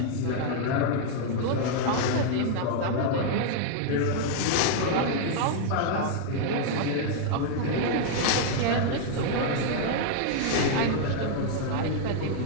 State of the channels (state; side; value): different; both; correlation 0.00